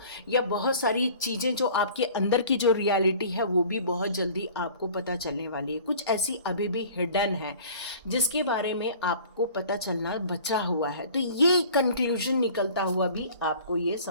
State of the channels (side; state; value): both; inverted; correlation -0.46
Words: या बहुत सारी चीज़ें जो आपके अंदर की जो रियलिटी है वो भी बहुत जल्दी आपको पता चलने वाली है। कुछ ऐसी अभी भी हिडन है जिसके बारे में आपको पता चलना बचा हुआ है। तो ये कंक्लूजन निकलता हुआ भी आपको ये